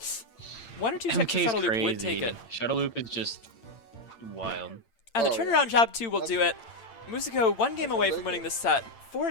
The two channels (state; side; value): late; right; 8.8 ms